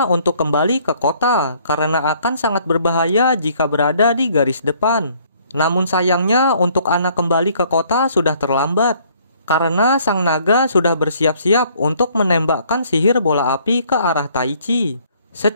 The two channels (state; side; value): inverted; both; correlation -0.61